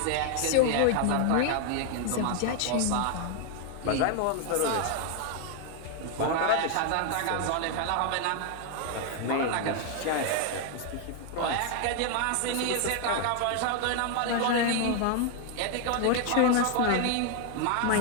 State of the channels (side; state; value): both; different; correlation 0.00